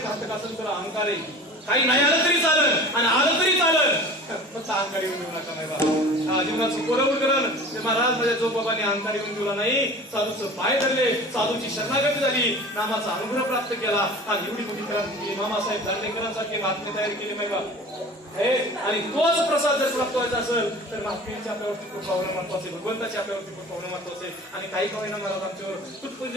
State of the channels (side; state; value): both; normal; correlation 0.39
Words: घातक असेल तर अहंकार आहे काही नाही आलं तरी चालत आणि आलं तरी चालत फक्त अहंकार येऊन देऊ नका नाही बा जीवनाचं कोरवून करण ते महाराज माझ्या जो बाबांनी अहंकार येऊन दिला नाही साधूचं पाय धरले साधूची शरणागती झाली नामाचा अनुग्रह प्राप्त केला आणि एवढी मोठी क्रांती केली मामासाहेब दांडेकरांसारखे महात्मे तयार केले माहिती आणि तोच प्रसाद जर प्राप्त व्हायचा असेल तर महात्म्यांच्या आपल्यावरती खूप पावलं महत्वाचे भगवंताच्या आपल्यावरती खूप पावलं महत्वाचे आणि काही कवयना महाराज आमच्यावर